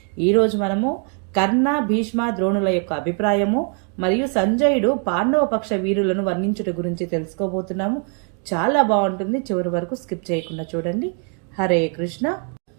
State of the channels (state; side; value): quieter; left; 39.6 dB